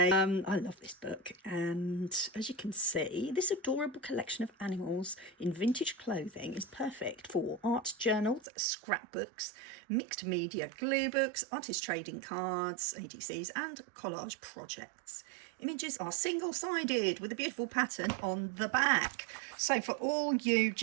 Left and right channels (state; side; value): drops out; left; at 8.4 s